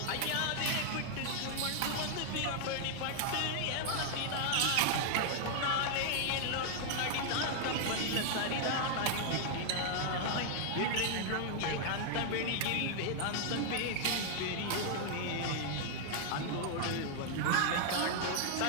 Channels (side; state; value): both; different; correlation 0.00